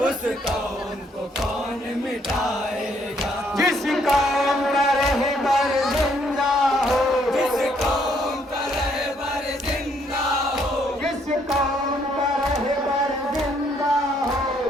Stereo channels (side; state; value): both; normal; correlation 0.69